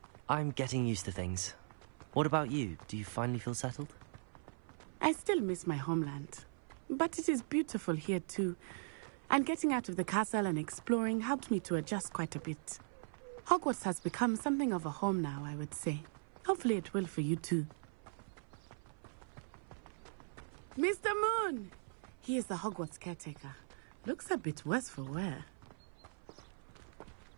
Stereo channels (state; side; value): silent; left; 51 dB below the other